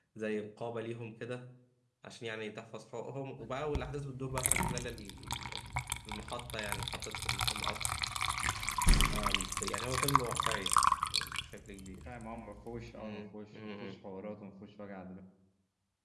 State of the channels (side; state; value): both; identical; correlation 1.00